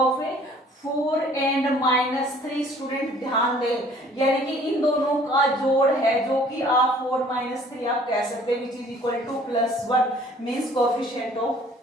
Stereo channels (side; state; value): both; normal; correlation 0.55